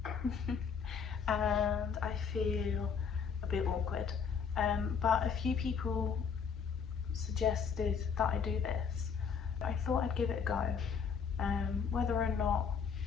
and I feel a bit awkward. But a few people suggested that I do this. I thought I'd give it a go. Whether or not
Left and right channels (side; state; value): right; quieter; 6.4 dB